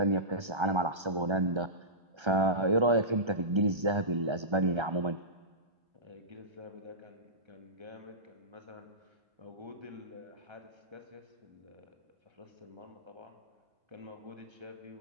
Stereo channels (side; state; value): left; late; 1.3 ms